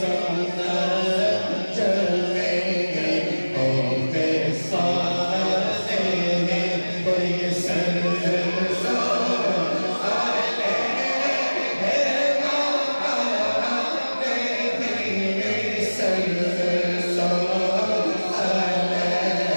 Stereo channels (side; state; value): both; inverted; correlation -1.00